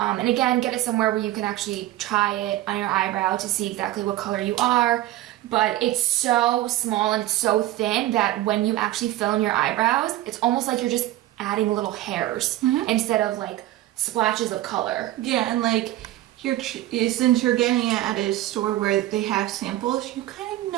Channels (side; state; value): left; quieter; 15.2 dB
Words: again, get it somewhere where you can actually try it on your eyebrow to see exactly what color you are. But it's so small and it's so thin that when you actually fill in your eyebrows, it's almost like you're just adding little hairs instead of like splashes of color. Yeah, and like since you're getting it at a store where they have samples, you kind of